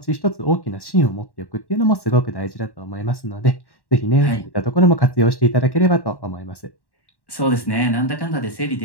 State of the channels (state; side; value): late; right; 1.1 ms